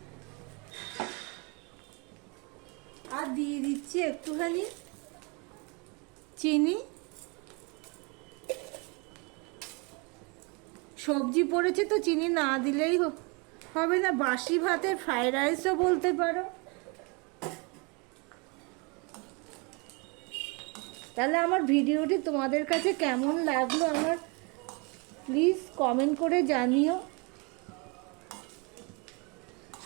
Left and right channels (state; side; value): quieter; left; 31.2 dB